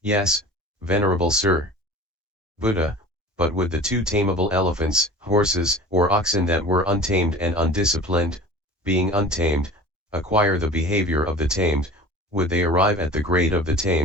yes, venerable sir. Buddha, but would the two tameable elephants, horses, or oxen that were untamed and undisciplined, being untamed, acquire the behavior of the tamed, would they arrive at the grade of the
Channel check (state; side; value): normal; both; correlation 0.39